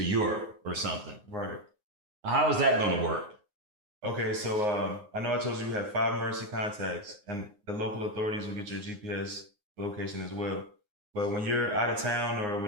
Europe or something, how is that going to work? Okay, so I know I told you we have 5 emergency contacts, and the local authorities will get your GPS location as well. But when you're out of town or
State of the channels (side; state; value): left; late; 9.6 ms